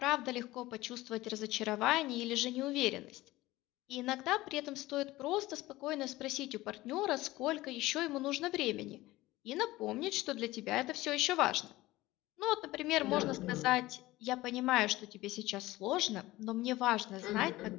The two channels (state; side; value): quieter; right; 18.2 dB